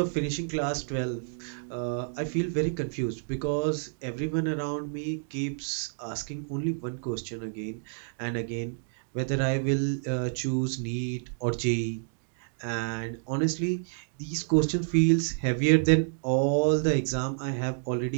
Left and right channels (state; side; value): silent; left; digital silence